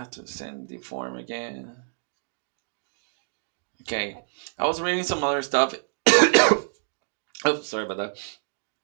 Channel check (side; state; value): left; silent; digital silence